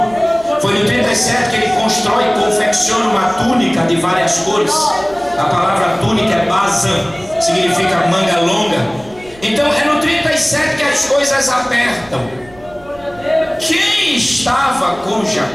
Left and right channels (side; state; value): right; noise; rumble, 23 dB below the sound